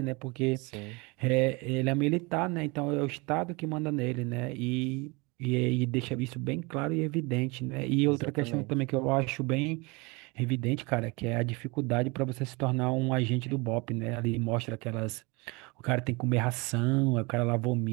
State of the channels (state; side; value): quieter; left; 27.1 dB